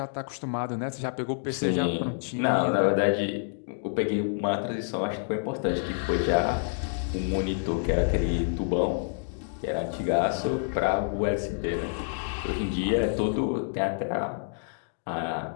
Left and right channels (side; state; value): right; silent; digital silence